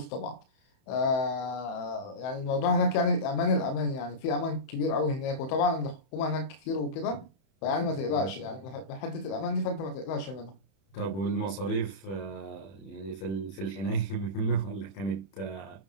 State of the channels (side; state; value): right; late; 31 ms